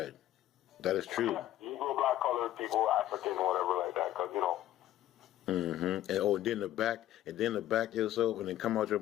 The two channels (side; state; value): right; quieter; 13.3 dB